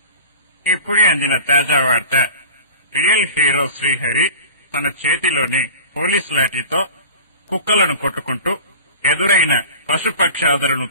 ఇప్పుడే అందిన తాజా వార్త. రియల్ హీరో శ్రీహరి తన చేతిలోని పోలీస్ లాఠీతో కుక్కలను కొట్టుకుంటూ ఎదురైన పశుపక్షాదులను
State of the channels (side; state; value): both; inverted; correlation -0.38